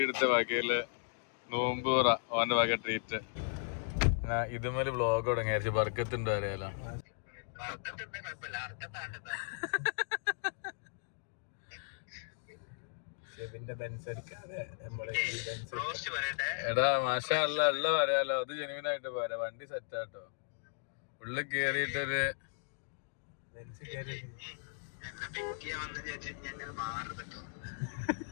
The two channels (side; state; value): right; silent; digital silence